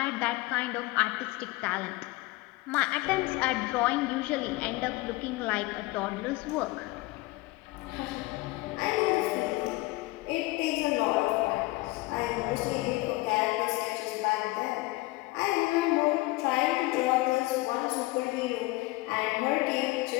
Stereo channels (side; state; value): right; quieter; 21.1 dB